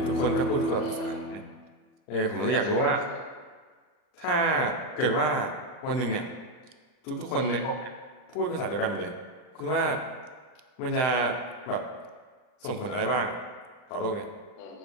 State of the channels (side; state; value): right; late; 39 ms